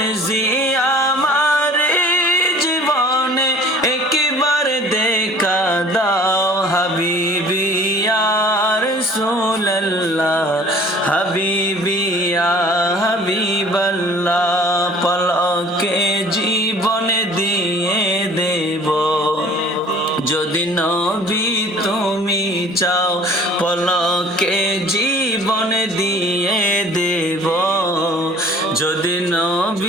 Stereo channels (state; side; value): normal; both; correlation 0.49